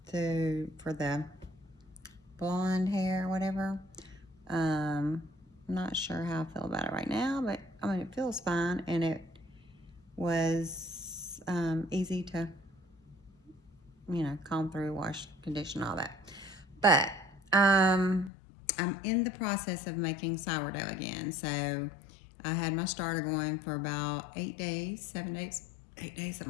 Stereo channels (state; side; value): drops out; right; at 18.3 s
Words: for the blonde hair or whatever. I'm not sure how I feel about it right now, but I mean, it feels fine, and it was easy to, comb through, wash, condition, all that. But I'm in the process of making sourdough again. So I had my starter going for about 8 days, 7 days, 8 days,